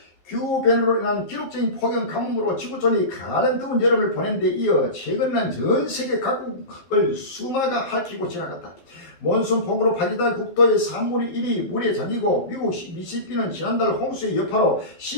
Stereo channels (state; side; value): late; right; 12 ms